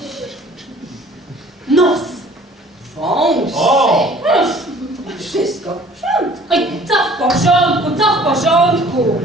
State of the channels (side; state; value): both; normal; correlation 0.52